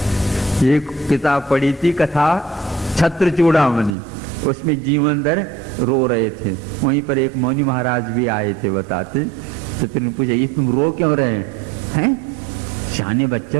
एक किताब पढ़ी थी कथा छत्र चूड़ामणि, उसमें जीवनधर रो रहे थे। वहीं पर एक मौनी महाराज भी आए थे बताते, तो फिर पूछा ये तुम रो क्यों रहे हैं? शाने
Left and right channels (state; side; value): drops out; left; at 4.0 s